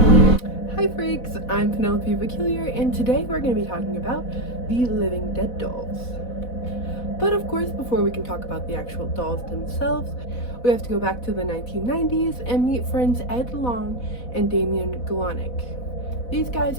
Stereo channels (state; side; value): late; right; 4.1 ms